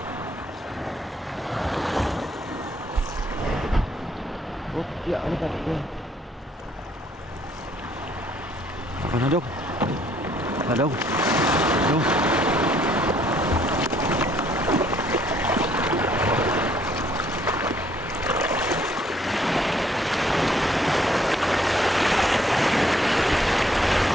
Oh, ya, ano ka? Ako na dong. Dong. Dong.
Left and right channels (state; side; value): normal; both; correlation 0.65